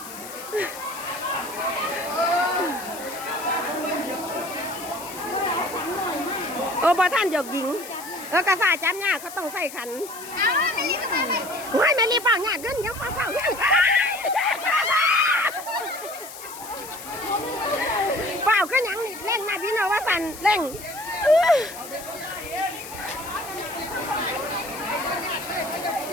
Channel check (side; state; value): left; noise; hiss, 13 dB below the sound